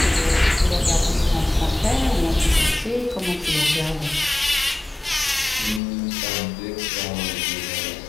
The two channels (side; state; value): right; drops out; at 5.8 s